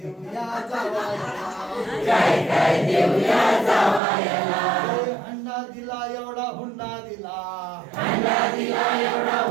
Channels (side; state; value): left; drops out; at 4.0 s